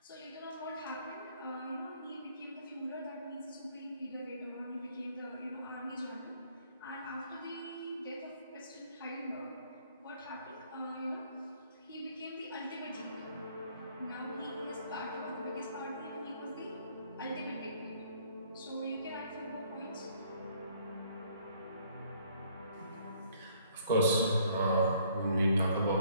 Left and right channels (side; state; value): both; inverted; correlation -0.62